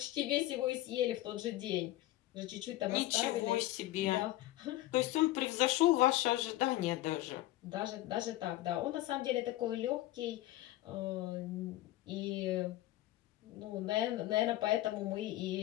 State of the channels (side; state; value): right; quieter; 16.1 dB